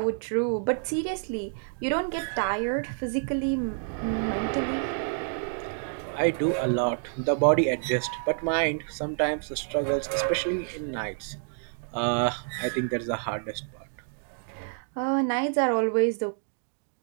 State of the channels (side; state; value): left; silent; digital silence